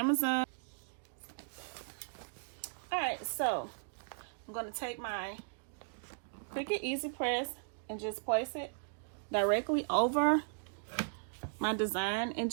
All right, so I'm going to take my Cricut Easy Press and just place it directly over my design and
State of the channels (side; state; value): left; silent; digital silence